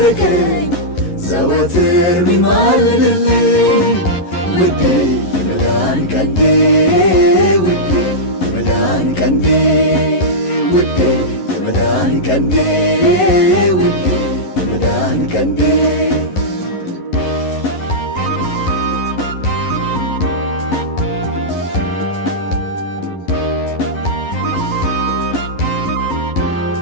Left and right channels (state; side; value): late; right; 11 ms